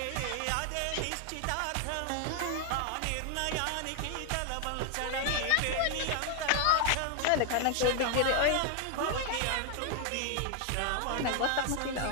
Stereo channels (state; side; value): different; both; correlation 0.00